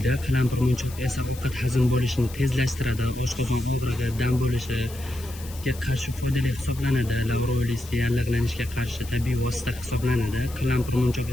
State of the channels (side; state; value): left; noise; hiss, 17 dB below the sound